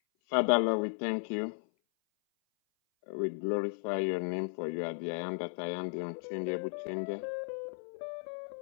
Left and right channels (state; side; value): silent; right; 55 dB below the other